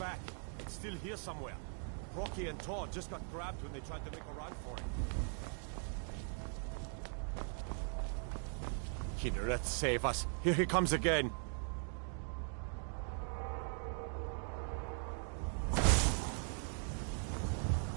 It's still here somewhere. Rocky and Todd just got grabbed when they tried to make a run for it. Kinneret, save us. Here he comes again.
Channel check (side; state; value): left; silent; 51 dB below the other